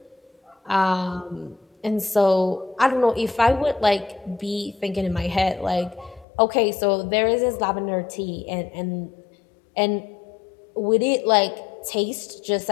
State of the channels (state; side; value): drops out; right; at 6.2 s